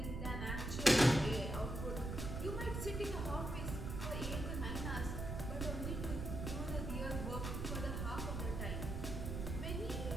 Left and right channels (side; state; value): right; noise; rumble, 3 dB below the sound